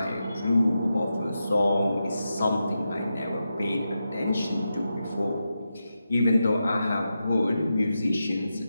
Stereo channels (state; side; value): inverted; both; correlation -0.88